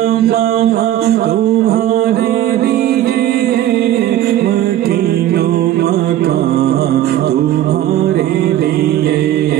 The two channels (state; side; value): quieter; left; 12.6 dB